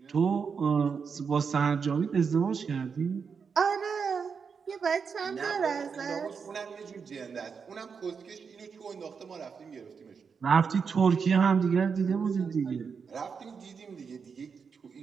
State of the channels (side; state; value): left; quieter; 5.9 dB